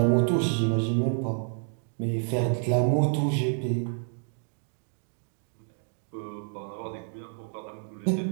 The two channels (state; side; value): silent; left; 56 dB below the other